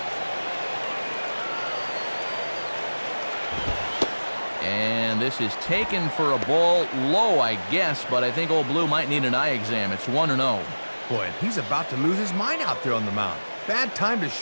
And this is taken for a ball low, I guess, but I think old Blue might need an eye exam. It's 1-0. Boy, and he's about to lose his mind out there on the mound. Bad time to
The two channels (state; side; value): inverted; both; correlation -1.00